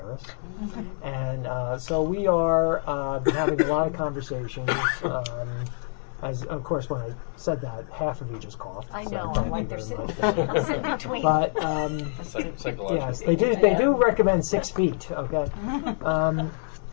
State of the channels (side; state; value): right; silent; digital silence